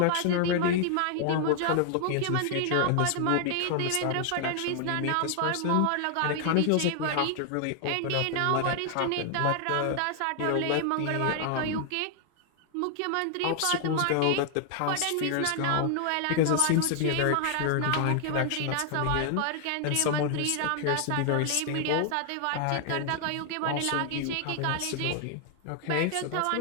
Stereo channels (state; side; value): different; both; correlation 0.00